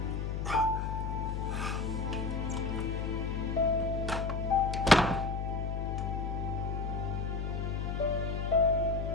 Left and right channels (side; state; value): left; noise; hum, 1 dB below the sound